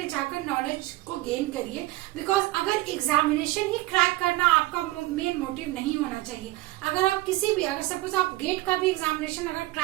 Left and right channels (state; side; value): quieter; left; 18.8 dB